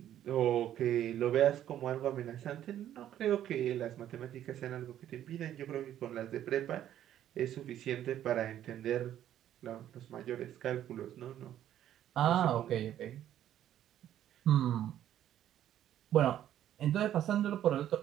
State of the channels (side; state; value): left; quieter; 11.4 dB